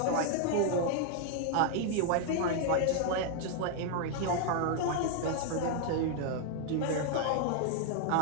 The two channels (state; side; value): different; both; correlation 0.00